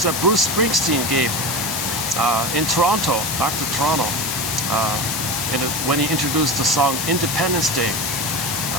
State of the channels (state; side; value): noise; left; hiss, 2 dB below the sound